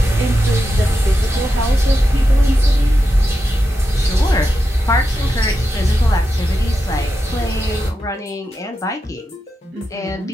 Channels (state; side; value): normal; both; correlation 0.88